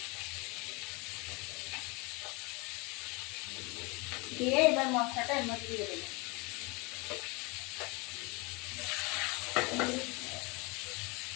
দিয়ে এবার মশলাটা এর মধ্যে দিয়ে দেবো।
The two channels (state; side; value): quieter; right; 27.6 dB